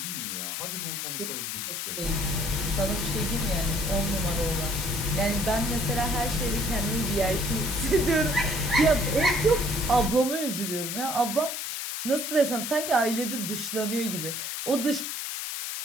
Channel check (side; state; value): left; noise; hiss, 4 dB below the sound